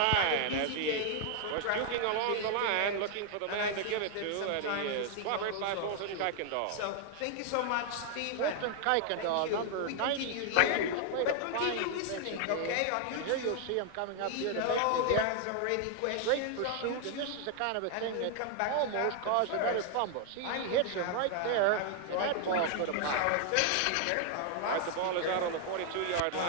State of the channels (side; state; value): both; different; correlation 0.00